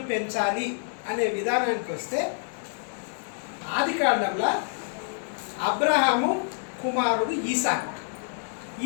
పెంచాలి అనే విధానానికి వస్తే, ఆదికాండంలో అబ్రహాము కుమారుడు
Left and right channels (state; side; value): silent; right; 60 dB below the other